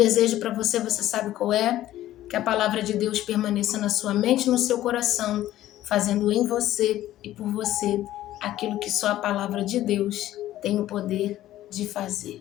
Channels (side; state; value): right; quieter; 13.9 dB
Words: para você, você sabe qual é? Que a palavra de Deus permaneça na sua mente e no seu coração, fazendo em você e por você aquilo que só a palavra de Deus tem o poder de